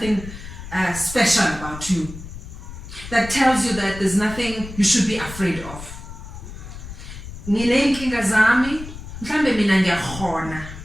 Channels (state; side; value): noise; left; rumble, 12 dB below the sound